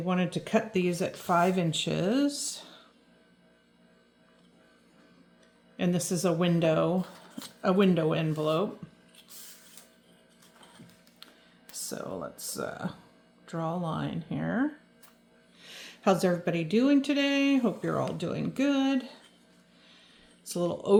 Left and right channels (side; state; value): both; identical; correlation 1.00